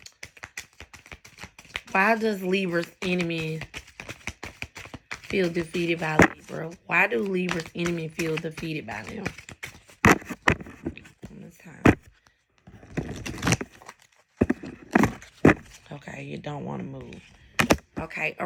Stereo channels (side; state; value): both; identical; correlation 1.00